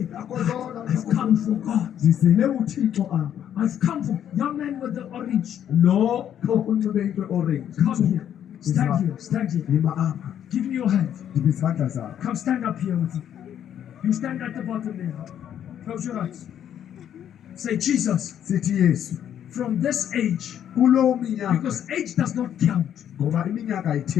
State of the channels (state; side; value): quieter; right; 9.9 dB